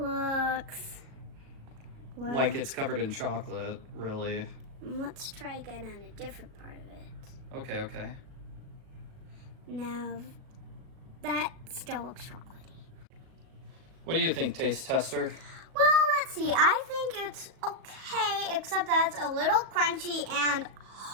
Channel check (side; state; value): left; late; 37 ms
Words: well, Like it's covered in chocolate, really. let's try again on a different part of it. Okay. Now, that still looks chocolatey. What do you think, taste tester? Well, let's see. I think it's okay, except that it's a little crunchy and